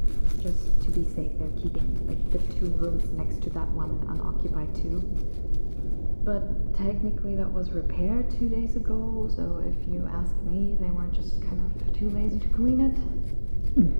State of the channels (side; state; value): both; inverted; correlation -1.00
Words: just to be safe, they're keeping like the 2 rooms next to that one unoccupied too. But technically that was repaired 2 days ago, so if you ask me, they were just kind of too lazy to clean it.